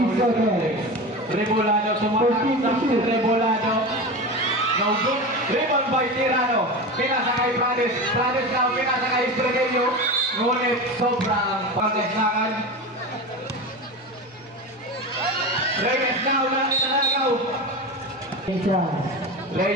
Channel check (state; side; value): normal; both; correlation 0.26